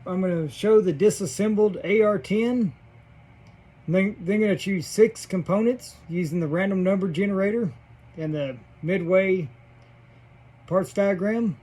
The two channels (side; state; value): both; identical; correlation 1.00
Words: I'm going to show the disassembled AR-10. Then going to choose 6 components using the random number generator and the midway parts diagram.